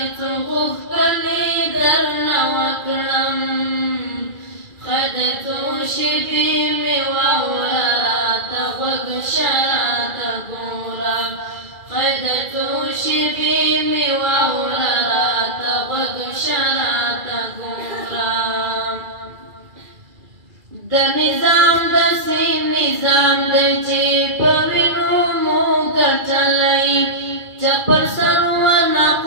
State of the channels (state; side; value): late; left; 2.4 ms